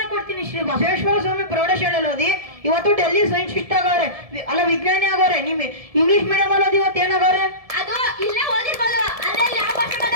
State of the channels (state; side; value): late; left; 1.7 ms